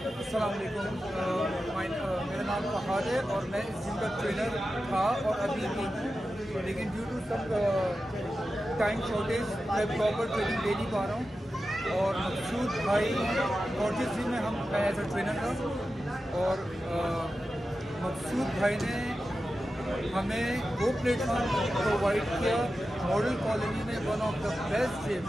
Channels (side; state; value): both; normal; correlation 0.92